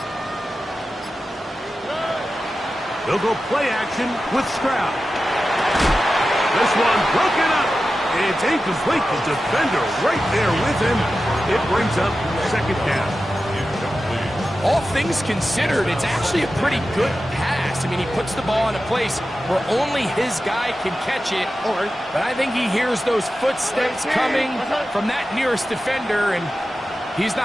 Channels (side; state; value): both; normal; correlation 0.93